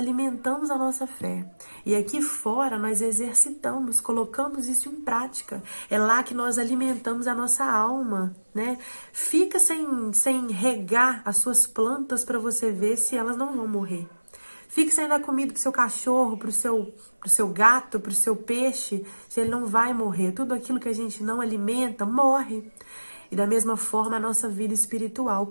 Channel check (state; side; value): inverted; both; correlation -1.00